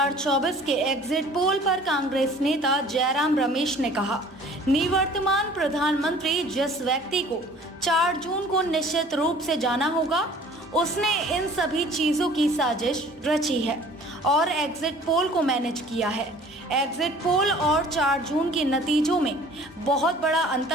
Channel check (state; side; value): normal; both; correlation 0.50